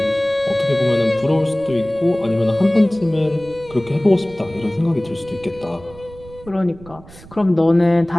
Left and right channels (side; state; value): right; noise; rumble, 20 dB below the sound